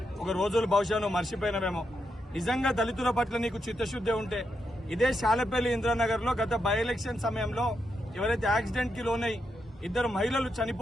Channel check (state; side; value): normal; both; correlation 0.83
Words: ఒక రోజులు బహుశా నువ్వు మర్చిపోయినవేమో. నిజంగా దళితుల పట్ల నీకు చిత్తశుద్ధి ఉంటే ఇదే శాలపల్లి ఇంద్రానగర్ లో గత బై ఎలక్షన్ సమయంలో ఎవరైతే యాక్సిడెంట్ కి లోనై 2 మహిళలు